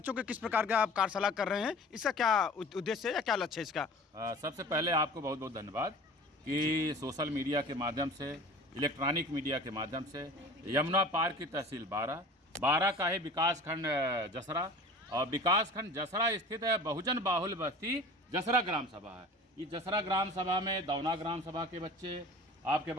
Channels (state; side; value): normal; both; correlation 0.41